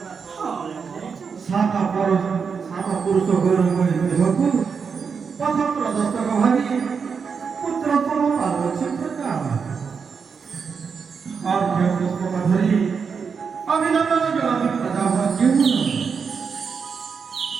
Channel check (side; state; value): left; quieter; 5.9 dB